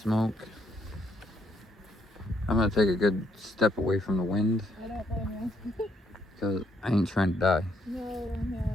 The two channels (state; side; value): normal; both; correlation 0.72